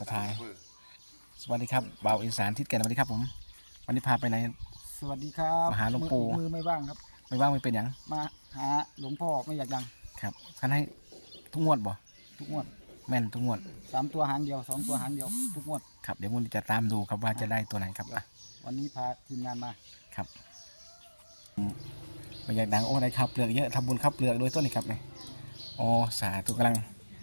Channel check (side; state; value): both; inverted; correlation -1.00